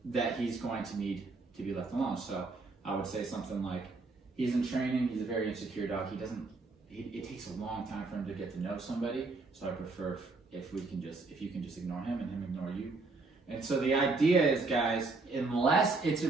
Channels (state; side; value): quieter; left; 3.7 dB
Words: that he's going to need to be left alone. So I would say something like, he's in training. He's a very insecure dog. It takes a long time for him to get to know somebody. So I prefer if you can just ignore him and him ignore you. And so the idea is, guys, unless it's a